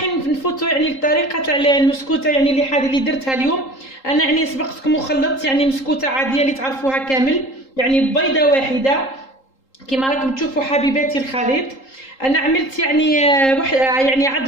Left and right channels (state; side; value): late; right; 3.8 ms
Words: نفوتوا يعني الطريقه تاع المسكوته يعني اللي درتها اليوم. انا يعني سبقتكم وخلطت يعني مسكوته عاديه اللي تعرفوها كامل، يعني بيضه واحده كما راكم تشوفوا حبيباتي الخليط. انا عملت يعني